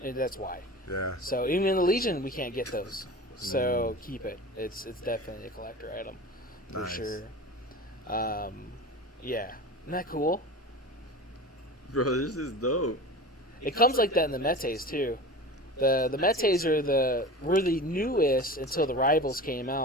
and that's why. Yeah. So even in the Legion, we can't get those. So keep it. It's definitely a collector item for Nice. sure. Yeah, isn't that cool? Bro, this is dope. It comes like that in the Metes too. The Metes were the newest until the Rivals came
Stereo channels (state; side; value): normal; both; correlation 0.33